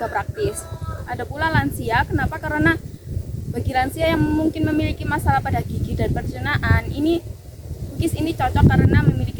praktis. Ada pula lansia. Kenapa? Karena bagi lansia yang mungkin memiliki masalah pada gigi dan pencernaan, cookies ini cocok karena memiliki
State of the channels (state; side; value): identical; both; correlation 1.00